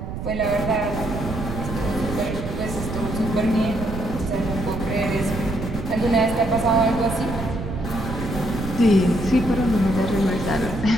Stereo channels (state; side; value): noise; right; rumble, 6 dB below the sound